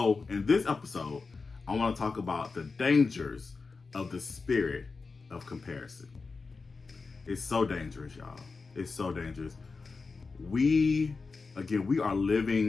in this episode, I want to talk about the dangers of the spirit of comparison. It's so dangerous, y'all. It's so dangerous. We are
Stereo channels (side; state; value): right; quieter; 4.3 dB